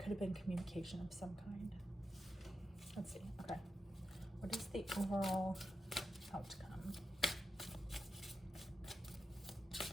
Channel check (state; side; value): normal; both; correlation 0.88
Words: have been communication of some kind. Let's see. Okay. What is the overall outcome?